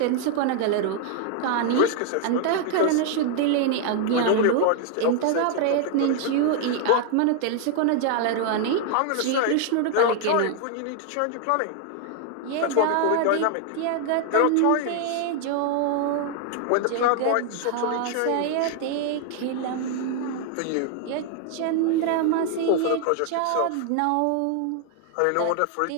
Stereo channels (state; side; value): different; both; correlation 0.00